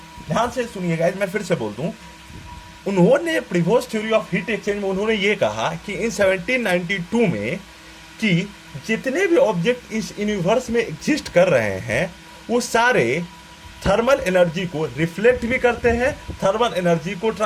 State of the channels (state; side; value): identical; both; correlation 1.00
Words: ध्यान से सुनिएगा, मैं फिर से बोल दूं, उन्होंने previous theory of heat exchange में उन्होंने ये कहा कि इन 1792 में कि जितने भी ऑब्जेक्ट इस यूनिवर्स में एग्जिस्ट कर रहे हैं वो सारे थर्मल एनर्जी को रिफ्लेक्ट भी करते हैं, थर्मल एनर्जी को